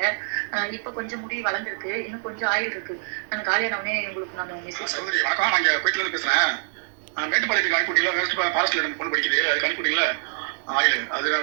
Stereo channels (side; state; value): left; silent; digital silence